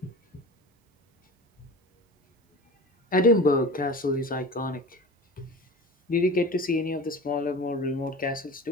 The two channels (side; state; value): both; normal; correlation 0.35